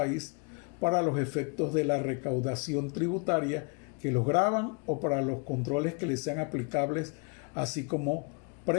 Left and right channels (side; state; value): right; quieter; 33.8 dB